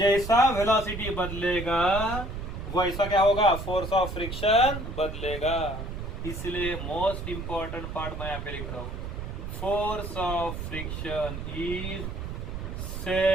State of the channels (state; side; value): noise; right; rumble, 6 dB below the sound